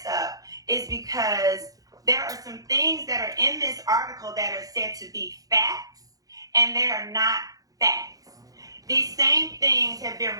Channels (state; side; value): late; left; 0.17 ms